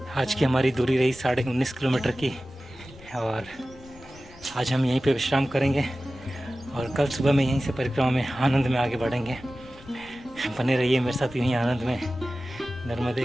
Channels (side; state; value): left; noise; rumble, 21 dB below the sound